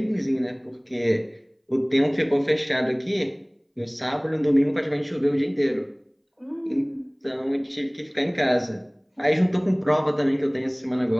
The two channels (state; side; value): identical; both; correlation 1.00